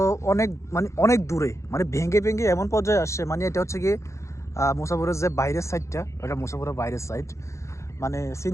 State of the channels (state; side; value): late; right; 0.14 ms